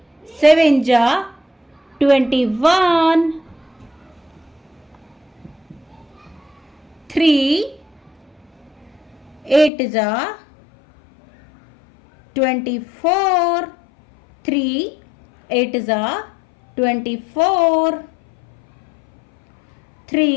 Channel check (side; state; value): right; drops out; at 9.7 s